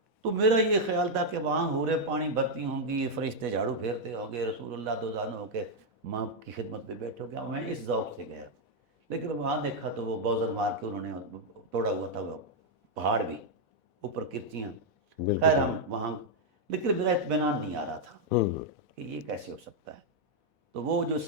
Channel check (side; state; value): left; late; 4.1 ms